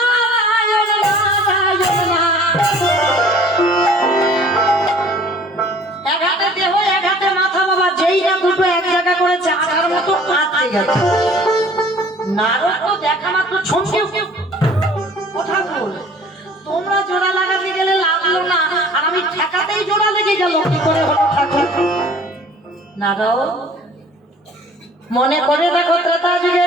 নারদ তো দেখা মাত্র ছমকে কথা বল। তোমরা জোড়া লাগাতে গেলে লাগলো না, আর আমি ঠেকাতেই জোড়া লেগে গেল। কি করে হলো ঠাকুর? নারদ মনে করে দেখো ত্রেতা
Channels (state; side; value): normal; both; correlation 0.51